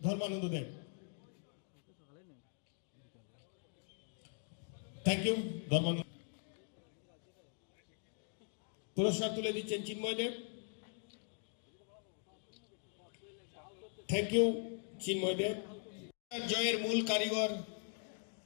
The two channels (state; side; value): silent; right; 50 dB below the other